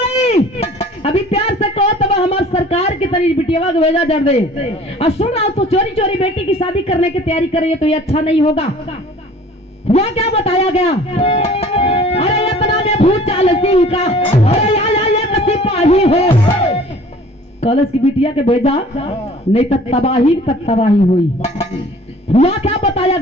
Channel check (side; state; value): both; normal; correlation 0.49